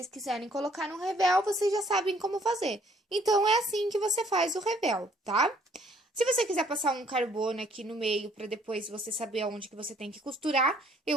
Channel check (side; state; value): both; normal; correlation 0.62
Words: quiserem colocar no revel, vocês já sabem como fazer. Então, é assim que você faz o revel, tá? Se você quiser passar um carbono aqui no meio, para depois você saber aonde que você tem que costurar,